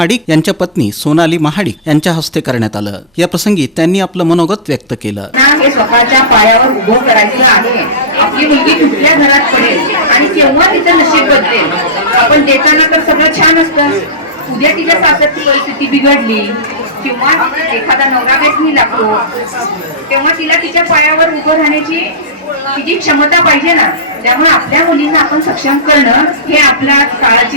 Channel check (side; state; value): both; normal; correlation -0.11